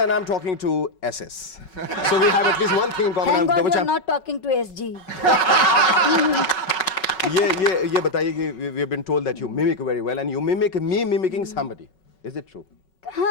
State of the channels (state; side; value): late; right; 5.4 ms